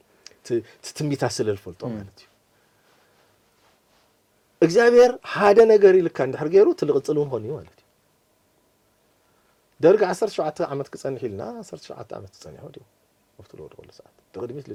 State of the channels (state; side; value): identical; both; correlation 1.00